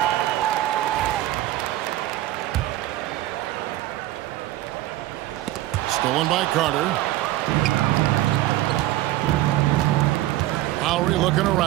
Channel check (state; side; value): quieter; left; 15.6 dB